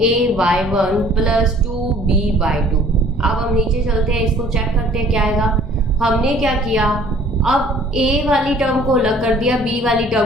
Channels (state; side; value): normal; both; correlation 0.54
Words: प्लस 2BY2। अब हम नीचे चलते हैं, इसको चेक करते हैं क्या आएगा। हमने क्या किया, अब A वाली टर्म को अलग कर दिया, B वाली